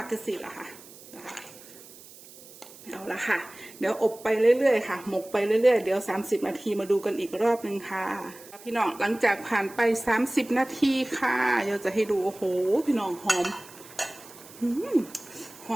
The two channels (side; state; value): right; noise; hiss, 20 dB below the sound